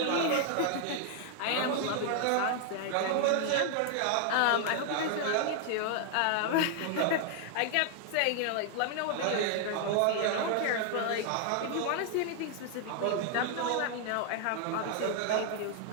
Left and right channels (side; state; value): both; different; correlation 0.00